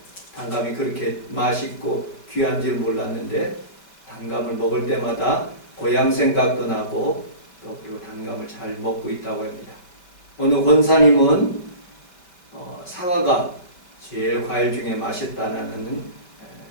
단감이 그렇게 맛있고 귀한 줄 몰랐는데 단감을 먹을 때마다 고향 생각도 나고 또 그리고 단감을 잘 먹고 있다고 합니다. 어느 권사님은 사과가 제일 과일 중에 맛있다는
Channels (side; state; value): right; late; 5.4 ms